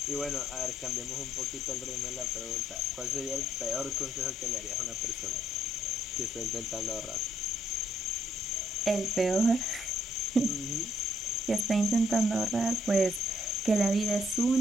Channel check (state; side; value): normal; both; correlation 0.69